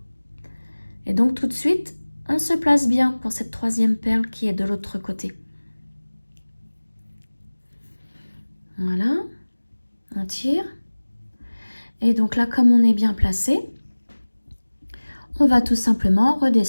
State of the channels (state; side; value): inverted; both; correlation -1.00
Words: Et donc tout de suite, on se place bien pour cette troisième perle qui est de l'autre côté. Voilà, on tire. Et donc là, comme on est bien placé, on va tout simplement